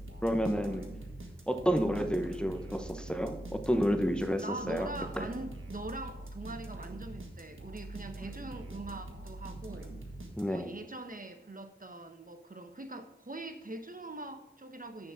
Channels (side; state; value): both; normal; correlation 0.85